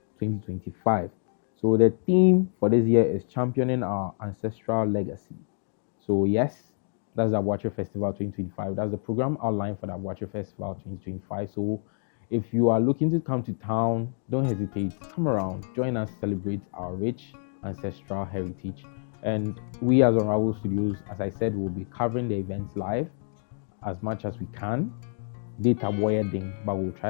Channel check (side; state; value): right; silent; digital silence